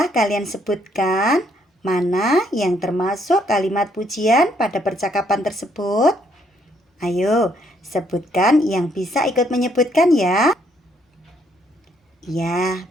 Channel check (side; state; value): both; normal; correlation 0.70